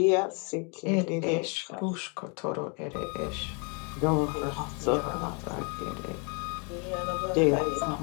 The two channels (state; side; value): quieter; right; 35.1 dB